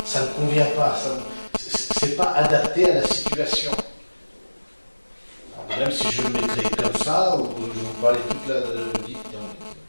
ça ne convient pas, c'est pas adapté à la situation. Alors, même si je le mettrais comme ça, ou je vous parlais toute la vie, non,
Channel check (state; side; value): inverted; both; correlation -1.00